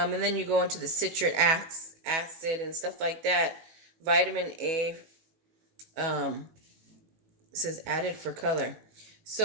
then you go into the citric acid and stuff like that. Vitamin A, it says added for color.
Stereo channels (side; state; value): left; late; 18 ms